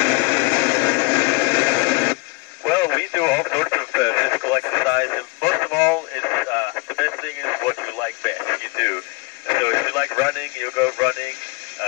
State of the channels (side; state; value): right; quieter; 25.9 dB